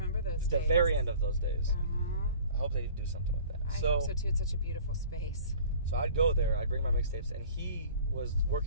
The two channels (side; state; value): both; inverted; correlation -0.46